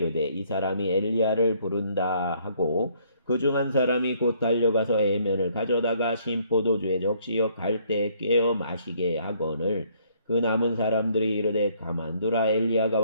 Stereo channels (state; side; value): inverted; both; correlation -0.65